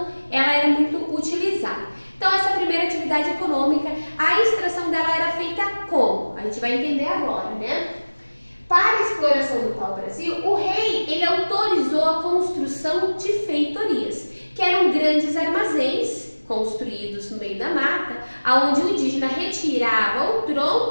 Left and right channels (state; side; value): inverted; both; correlation -1.00